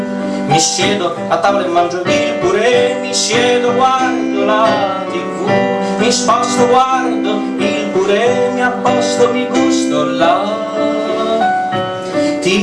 Mi siedo a tavola e mangio il purè, mi siedo, guardo la TV, mi sposto, guardo il purè, mi apposto, mi gusto la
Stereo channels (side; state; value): both; identical; correlation 1.00